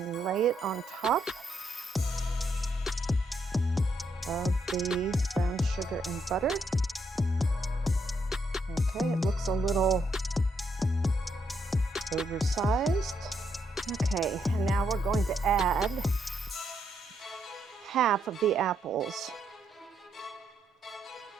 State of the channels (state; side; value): normal; both; correlation 0.77